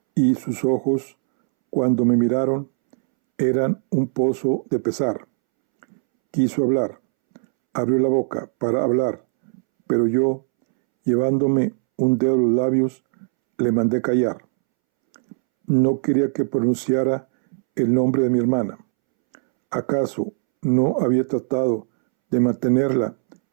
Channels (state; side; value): silent; left; 65 dB below the other